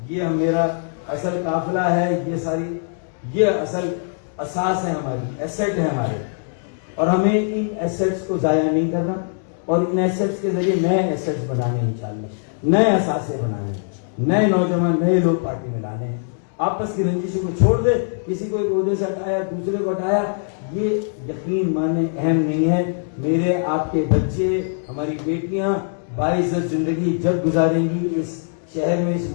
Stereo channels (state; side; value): silent; right; 64 dB below the other